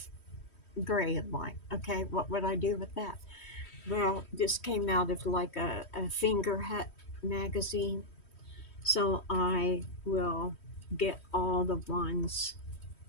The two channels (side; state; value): right; late; 3.1 ms